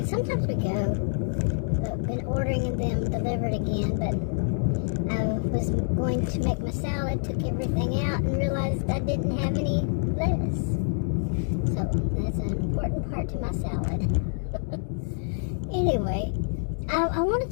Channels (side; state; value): right; silent; digital silence